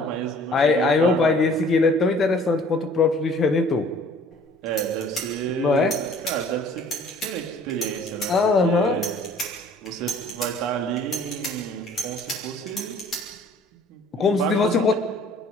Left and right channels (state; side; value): normal; both; correlation 0.53